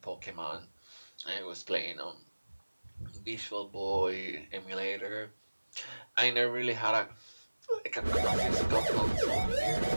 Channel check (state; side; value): inverted; both; correlation -1.00